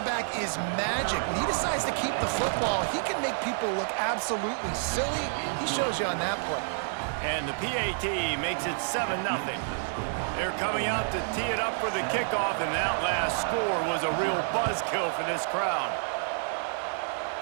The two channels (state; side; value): silent; left; digital silence